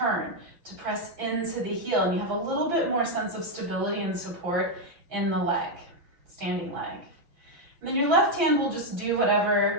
to press into the heel. And you have a little bit more sense of stability and support in the leg, standing leg. And then your left hand will just do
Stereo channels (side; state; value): left; late; 6.0 ms